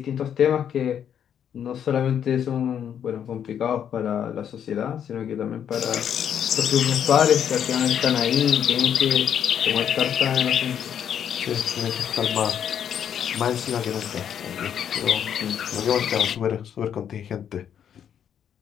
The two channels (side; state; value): right; quieter; 8.9 dB